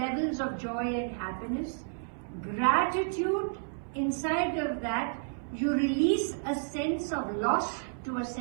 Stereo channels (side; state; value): left; silent; 57 dB below the other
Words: of joy and happiness. Gratitude, inside of that, you release a sense of loss to a